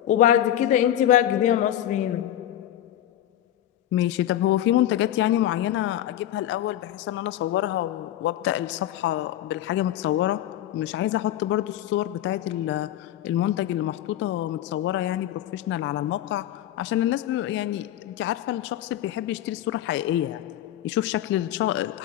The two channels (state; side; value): quieter; right; 12.2 dB